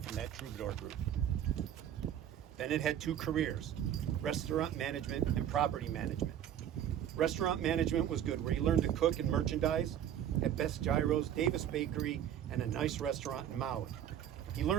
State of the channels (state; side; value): quieter; left; 10.3 dB